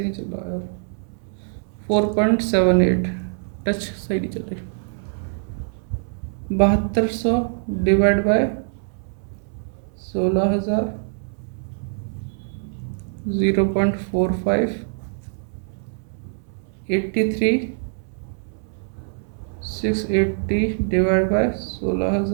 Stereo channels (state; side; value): silent; left; 63 dB below the other